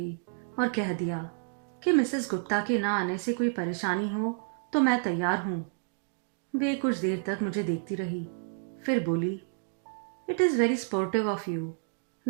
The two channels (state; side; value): silent; left; digital silence